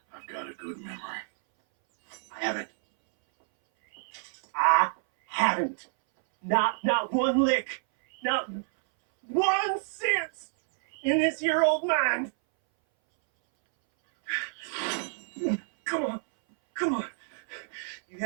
I've got a good memory. I haven't. Not one lick. Not 1 cent in this here old mind. Come on. You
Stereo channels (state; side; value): silent; left; 59 dB below the other